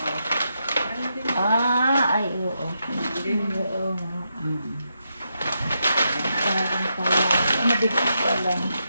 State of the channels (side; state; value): both; inverted; correlation -0.83